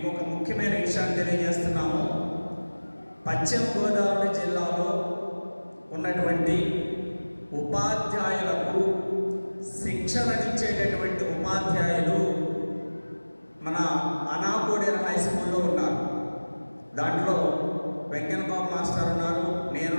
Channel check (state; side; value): inverted; both; correlation -1.00